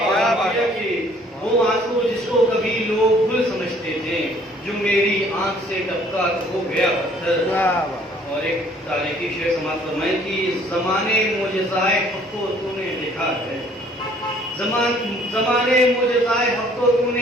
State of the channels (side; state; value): both; normal; correlation 0.59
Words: وہ آنسو جس کو کبھی لوگ گل سمجھتے تھے، جو میری آنکھ سے ٹپکا تو ہو گیا پتھر۔ اور ایک تاریخی شعر سماعت فرمائیں کہ زمانے معجزائے حق کو تو نے دیکھا ہے، زمانے معجزائے حق کو تو